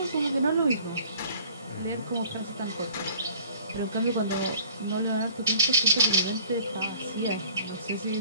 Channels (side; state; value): both; inverted; correlation -0.50